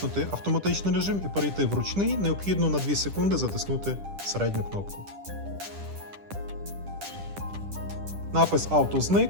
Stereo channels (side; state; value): left; late; 10 ms